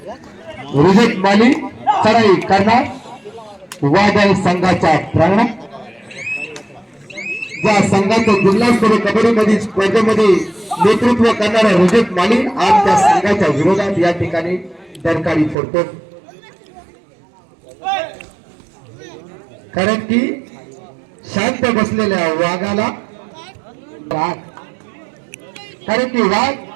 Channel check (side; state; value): left; drops out; at 15.6 s